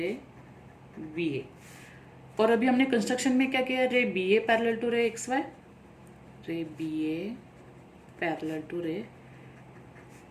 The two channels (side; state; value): both; identical; correlation 1.00